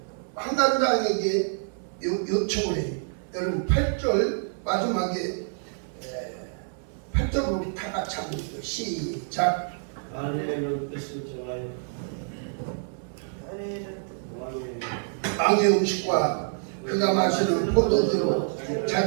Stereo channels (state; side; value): silent; left; 60 dB below the other